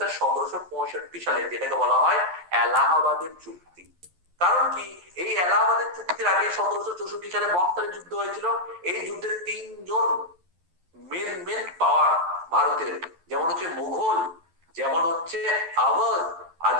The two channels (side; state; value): left; late; 11 ms